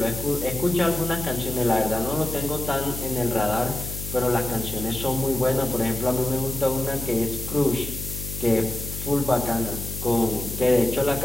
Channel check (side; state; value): left; noise; hum, 8 dB below the sound